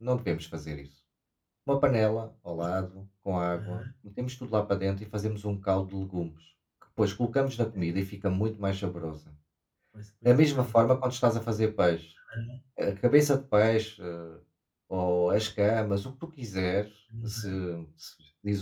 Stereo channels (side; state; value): both; identical; correlation 1.00